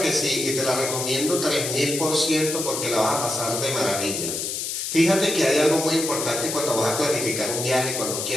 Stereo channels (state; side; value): noise; left; hiss, 3 dB below the sound